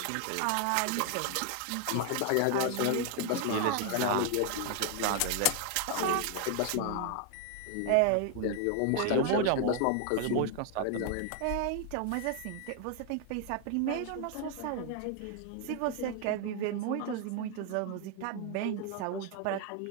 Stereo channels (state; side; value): different; both; correlation 0.00